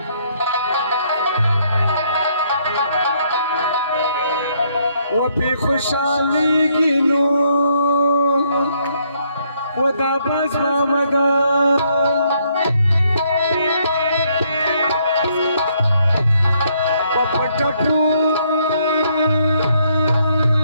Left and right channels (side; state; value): both; inverted; correlation -0.70